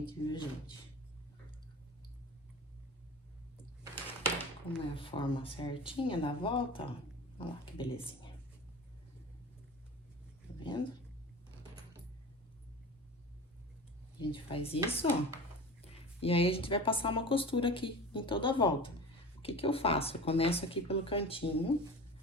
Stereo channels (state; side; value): normal; both; correlation 0.34